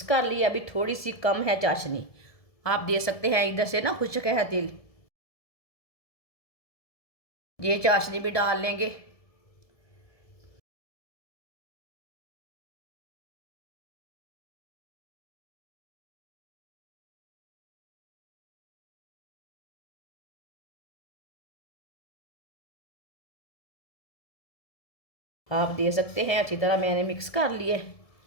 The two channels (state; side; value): late; right; 1.7 ms